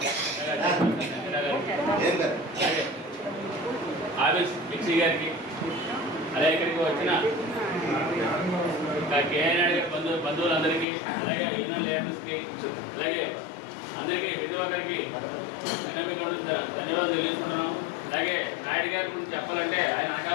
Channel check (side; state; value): right; drops out; at 10.9 s